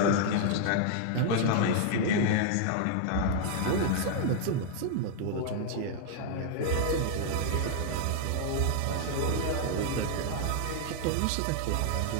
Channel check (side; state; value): both; different; correlation 0.00